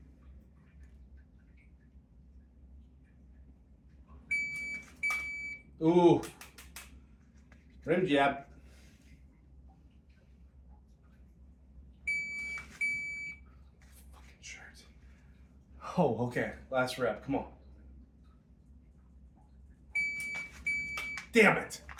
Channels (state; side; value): identical; both; correlation 1.00